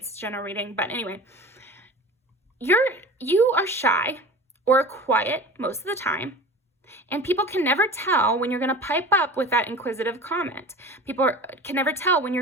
general reading. But anyway, you are shy or quiet most of the time, and people can never tell when you're going to pipe up with that inquisitive comment. People can never tell when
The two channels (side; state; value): both; normal; correlation 0.37